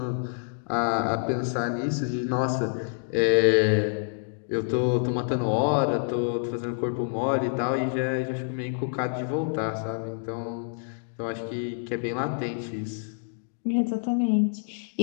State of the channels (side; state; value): right; silent; digital silence